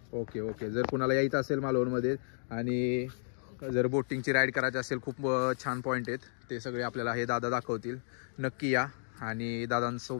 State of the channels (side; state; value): right; silent; digital silence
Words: ओके ओके जर कुणाला यायचं असेल मालवणमध्ये आणि जर बोटिंगची राईड करायची असेल खूप छान पॉईंट आहेत ते सगळे आपल्याला हे दादा दाखवतील नक्की या आणि